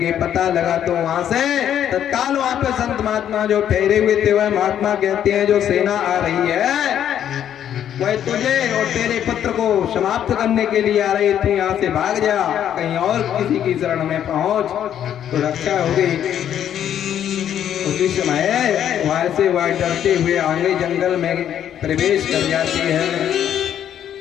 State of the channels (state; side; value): quieter; right; 10.0 dB